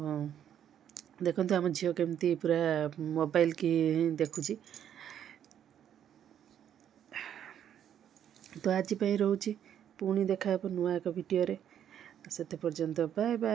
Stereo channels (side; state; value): left; quieter; 9.7 dB